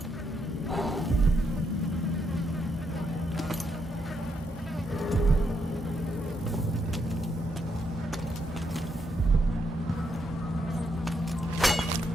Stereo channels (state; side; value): normal; both; correlation 0.78